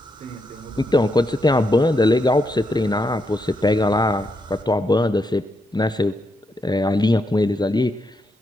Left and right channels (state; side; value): normal; both; correlation 0.81